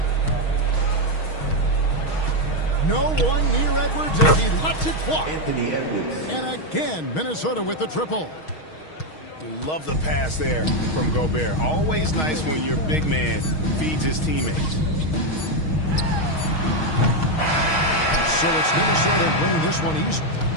No one near Edwards as he lets it fly. And again, Minnesota with the triple. Love the pass there from Gobert. Always nice when your big man feeds his teammates. So it's Minnesota winning this one easy.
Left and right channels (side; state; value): right; late; 6.4 ms